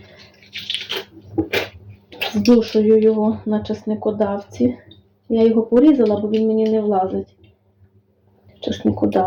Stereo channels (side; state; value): both; identical; correlation 1.00